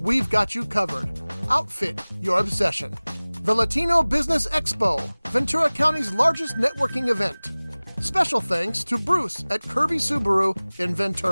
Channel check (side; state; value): both; inverted; correlation -1.00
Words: got you covered. Outfit your obsession. The Latino Business Expo, Ventura County's largest networking event. Special thanks to Bruce at Kirby Subaru in